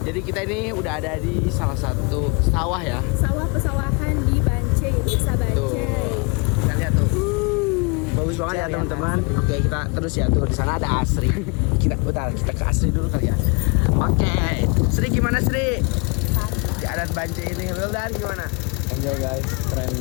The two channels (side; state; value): right; quieter; 32.3 dB